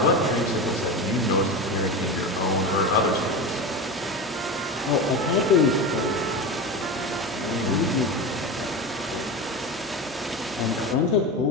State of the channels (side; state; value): both; normal; correlation 0.24